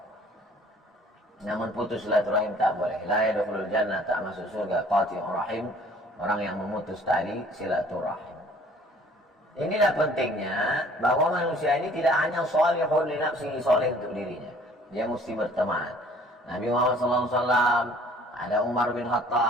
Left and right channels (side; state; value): both; normal; correlation 0.54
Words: Namun putus silaturahim tak boleh. La yadkhulul jannah, tak masuk surga qati'ur rahim, orang yang memutus tali silaturahim. Inilah pentingnya bahwa manusia ini tidak hanya sholihun li nafsihi, soleh untuk dirinya. Dia mesti berteman. Nabi Muhammad SAW, ada Umar bin